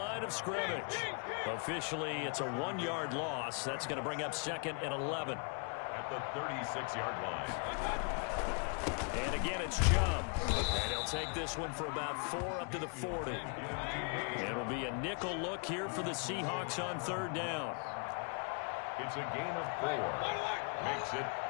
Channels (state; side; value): quieter; right; 39.9 dB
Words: of scrimmage. Officially, it's a 1-yard loss. That's going to bring up 2nd and 11. At the 36-yard line. And again, it's Chubb. And he'll take this one for about 4 up to the 40. It'll be a nickel look here for the Seahawks on 3rd down. It's a gain of 4. Makes it